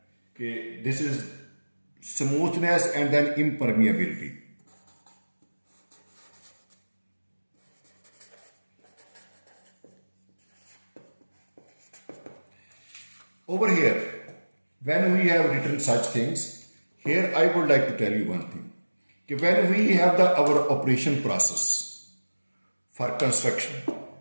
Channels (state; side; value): inverted; both; correlation -1.00